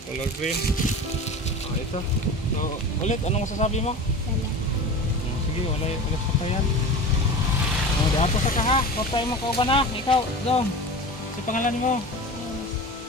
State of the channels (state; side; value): normal; both; correlation 0.33